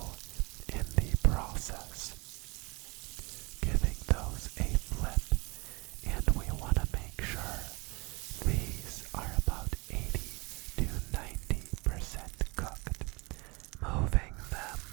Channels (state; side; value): quieter; left; 27.2 dB